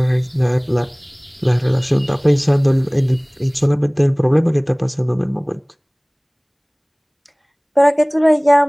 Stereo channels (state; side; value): identical; both; correlation 1.00